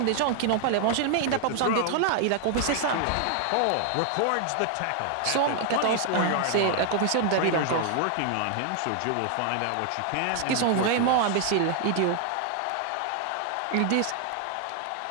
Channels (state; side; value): different; both; correlation 0.00